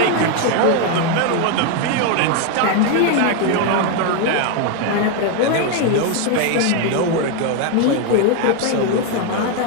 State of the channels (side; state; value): both; different; correlation 0.01